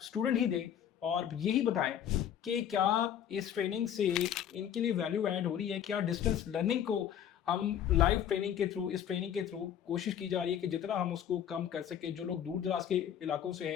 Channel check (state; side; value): quieter; right; 9.5 dB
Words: स्टूडेंट ही दें और यही बताएं कि क्या इस ट्रेनिंग से इनके लिए वैल्यू ऐड हो रही है, क्या डिस्टेंस लर्निंग को हम लाइव ट्रेनिंग के थ्रू, इस ट्रेनिंग के थ्रू कोशिश की जा रही है कि जितना हम उसको कम कर सके। जो लोग दूर दराज के इलाकों से